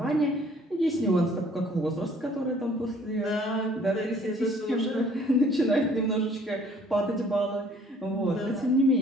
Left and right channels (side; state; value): both; normal; correlation 0.57